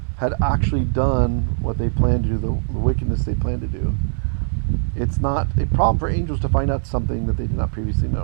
had actually done what they planned to do, the wickedness they planned to do. It's not a problem for angels to find out something that they did not previously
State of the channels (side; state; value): left; silent; 57 dB below the other